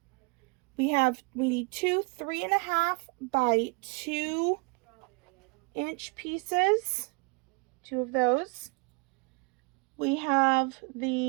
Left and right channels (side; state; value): left; quieter; 31.0 dB